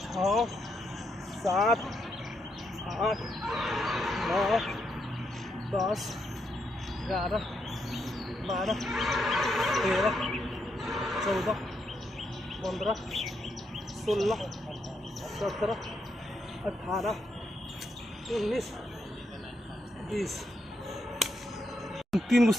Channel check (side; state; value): both; normal; correlation 0.80